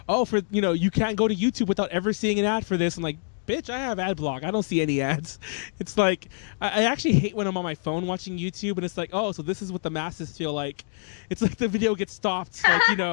"Oh, you can't go to YouTube without ever seeing an ad for this." I'm like, "Bitch, I have AdBlock. I don't see any ads." It's like I actually hate when I'm on my phone watching YouTube, and it's like, "Oh, so this is what the masses feel like." It's like the video gets stopped, like I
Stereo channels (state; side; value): silent; right; digital silence